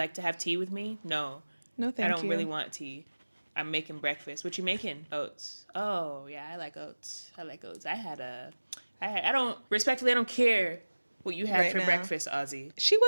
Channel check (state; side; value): inverted; both; correlation -1.00